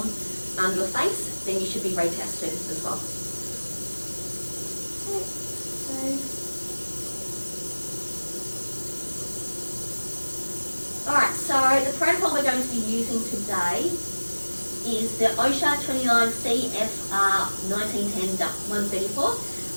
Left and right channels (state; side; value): inverted; both; correlation -1.00